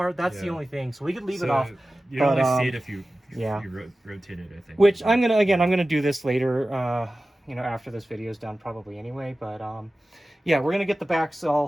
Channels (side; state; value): both; normal; correlation 0.95